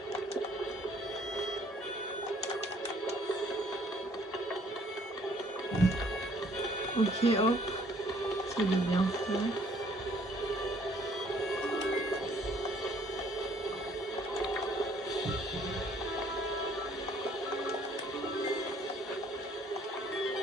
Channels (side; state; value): both; normal; correlation 0.61